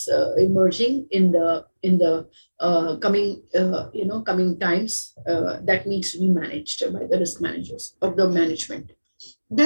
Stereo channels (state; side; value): inverted; both; correlation -1.00